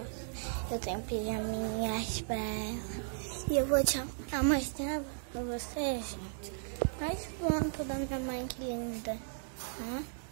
Eu tenho pijaminhas pra ela. E eu vou te mostrar pra você, gente. Mais foto da minha mãe, que linda.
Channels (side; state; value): left; silent; digital silence